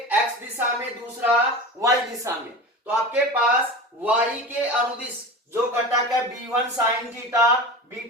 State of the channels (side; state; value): both; normal; correlation 0.30